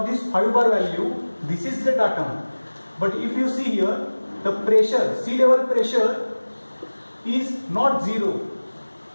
this 5 bar value, this is the datum. But if you see here, the pressure, sea level pressure is not 0.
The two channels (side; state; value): both; inverted; correlation -1.00